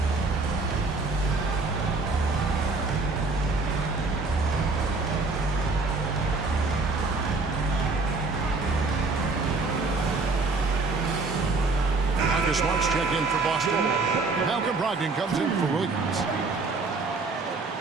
Smart's checked in for Boston. Malcolm Brogdon comes in for Williams.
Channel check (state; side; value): quieter; left; 3.8 dB